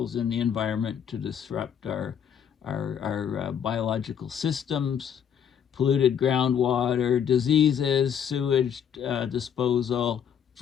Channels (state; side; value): quieter; right; 8.3 dB